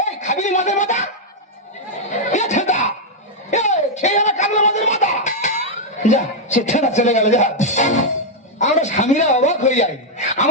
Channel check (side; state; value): both; normal; correlation -0.02